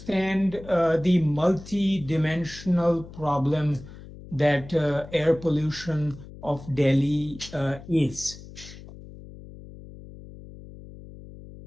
the multi-dimensional problem that air pollution of Delhi is.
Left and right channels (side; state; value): left; noise; hum, 16 dB below the sound